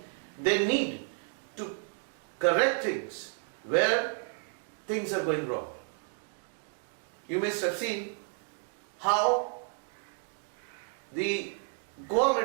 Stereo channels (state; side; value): silent; left; 56 dB below the other